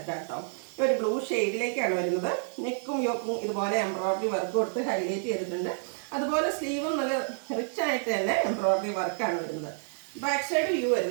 കേട്ടോ. ഒരു ബ്ലൂ ഷെയ്ഡിലേക്കാണ് വരുന്നത്. നെക്കും യോക്കും ഇതുപോലെ എംബ്രോയിഡറി വർക്ക് കൊടുത്ത് ഹൈലൈറ്റ് ചെയ്തിട്ടുണ്ട്. അതുപോലെ സ്ലീവും നല്ല റിച്ച് ആയിട്ട് തന്നെ എംബ്രോയിഡറി വർക്കാണ് വരുന്നത്. ബാക്ക് സൈഡ് വ്യൂ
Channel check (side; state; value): left; silent; digital silence